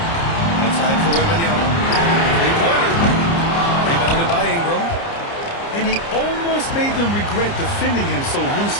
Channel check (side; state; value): right; late; 30 ms